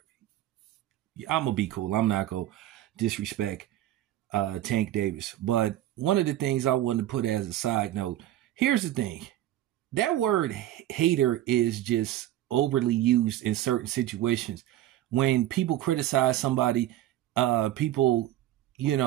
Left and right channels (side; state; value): left; quieter; 13.5 dB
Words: I'm gonna be cool. I'm not gonna disrespect Tank Davis. But one of the things I wanted to put as a side note, here's the thing. That word hater is just overly used in certain situations. When people criticize somebody, people,